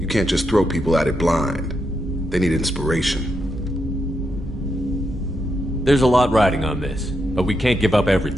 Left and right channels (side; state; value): both; normal; correlation 0.82